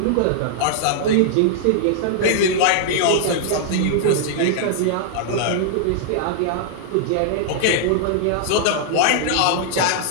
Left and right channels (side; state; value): both; different; correlation -0.01